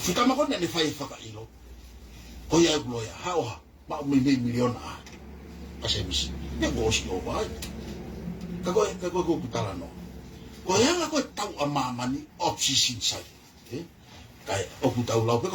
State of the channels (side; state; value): both; identical; correlation 1.00